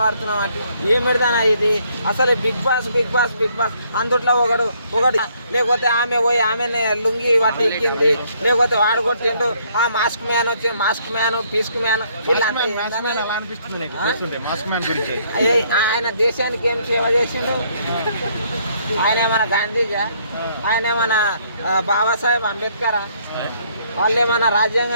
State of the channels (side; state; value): both; inverted; correlation -0.67